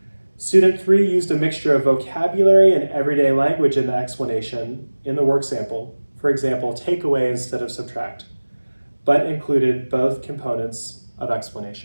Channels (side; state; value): both; inverted; correlation -1.00